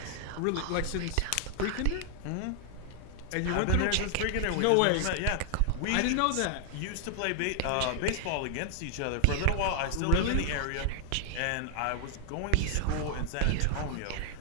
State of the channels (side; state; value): both; different; correlation 0.00